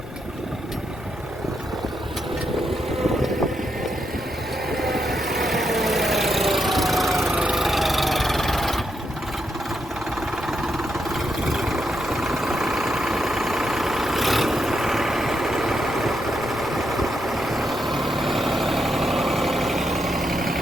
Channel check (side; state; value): both; normal; correlation 0.81